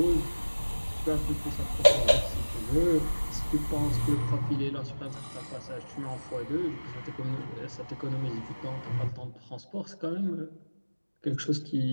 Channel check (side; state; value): both; inverted; correlation -1.00